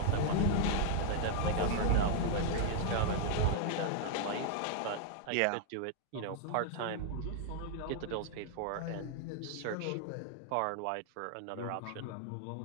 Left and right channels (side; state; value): both; different; correlation 0.00